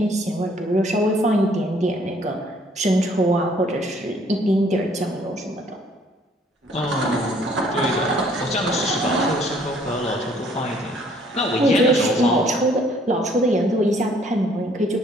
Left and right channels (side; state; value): both; normal; correlation 0.61